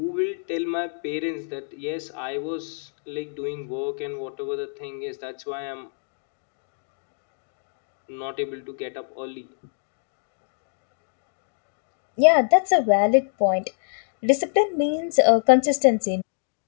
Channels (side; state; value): right; silent; digital silence